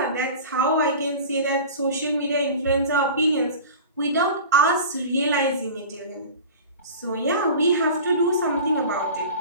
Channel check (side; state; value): both; inverted; correlation -0.36